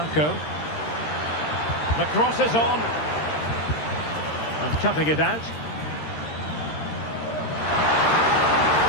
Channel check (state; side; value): late; right; 13 ms